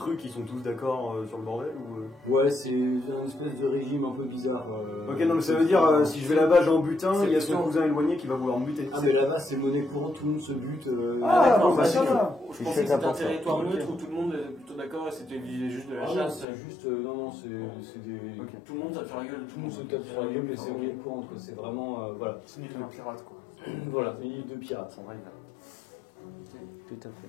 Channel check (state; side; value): drops out; right; at 16.4 s